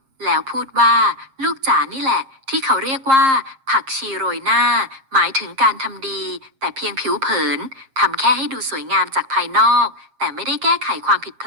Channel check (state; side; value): late; left; 7.5 ms